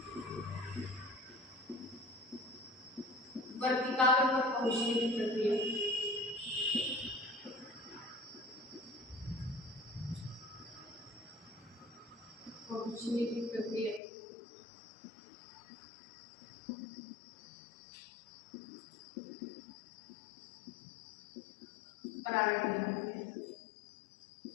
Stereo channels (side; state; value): right; drops out; at 14.0 s